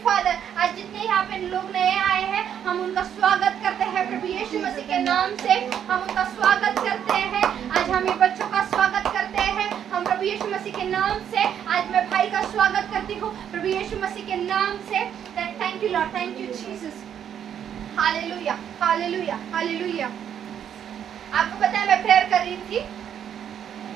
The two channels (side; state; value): left; quieter; 9.1 dB